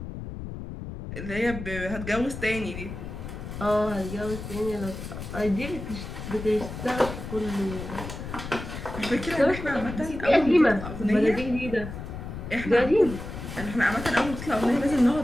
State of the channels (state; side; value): noise; left; rumble, 9 dB below the sound